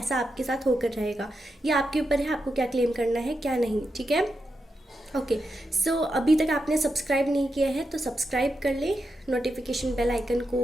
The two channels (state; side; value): normal; both; correlation 0.86